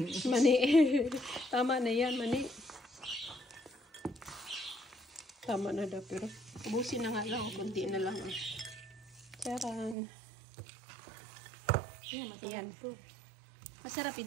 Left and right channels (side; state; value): left; drops out; at 10.0 s